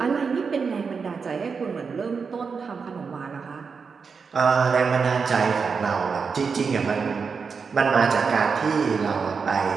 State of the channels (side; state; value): left; quieter; 5.4 dB